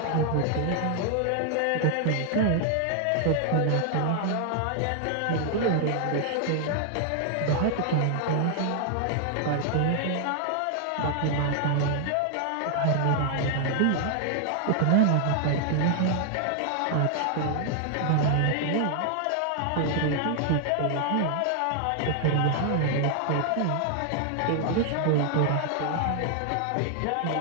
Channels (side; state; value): both; different; correlation 0.00